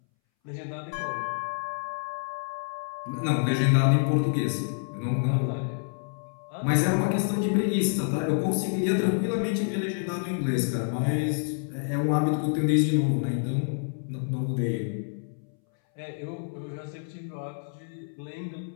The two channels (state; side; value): silent; right; 59 dB below the other